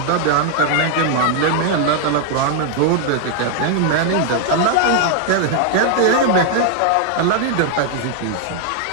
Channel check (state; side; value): different; both; correlation 0.00